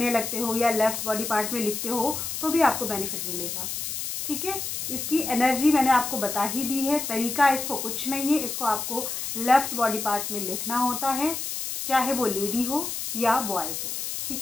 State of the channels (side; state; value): left; noise; hiss, 4 dB below the sound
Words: लगते हो या लेफ्ट बॉडी पार्ट में लिखते हो, तो भी आपको बेनिफिट मिलेगा, ठीक है। इसकी एनर्जी मैंने आपको बता ही दी है। तरीका इसको कुछ नहीं है, इसको आपको लेफ्ट बॉडी पार्ट में लिखना होता है, चाहे वो लेडी हो या बॉयज़ हो,